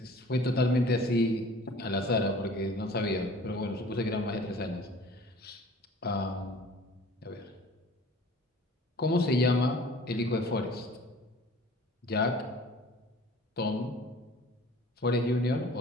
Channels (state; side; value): normal; both; correlation 0.47